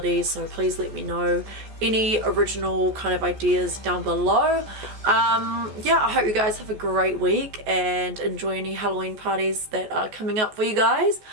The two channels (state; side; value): late; left; 14 ms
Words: so please let me know any original kind of ideas down below. Yeah, I hope you guys have a great week and enjoy any Halloween parties that are coming up for you guys,